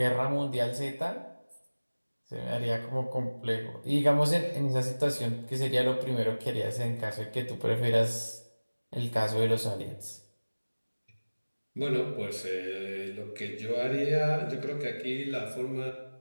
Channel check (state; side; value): inverted; both; correlation -1.00